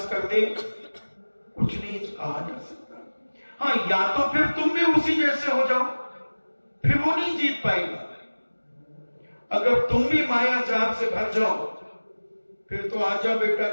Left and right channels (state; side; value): inverted; both; correlation -1.00